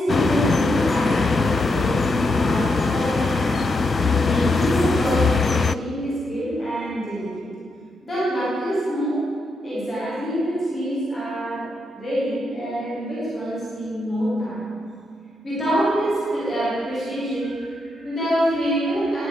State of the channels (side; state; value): both; normal; correlation 0.82